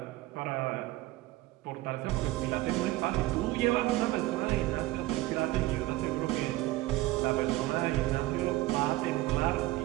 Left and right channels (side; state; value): left; quieter; 17.9 dB